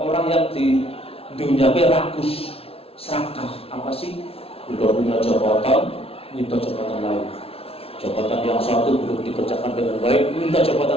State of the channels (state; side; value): late; right; 0.28 ms